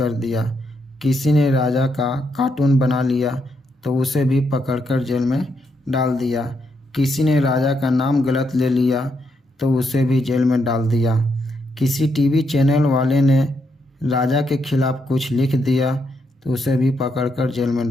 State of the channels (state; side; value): normal; both; correlation 0.79